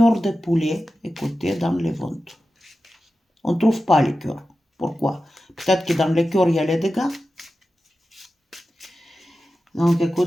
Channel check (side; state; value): both; normal; correlation 0.93